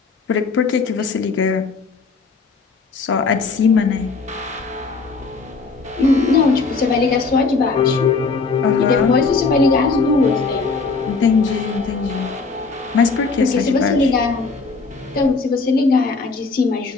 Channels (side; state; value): right; quieter; 4.3 dB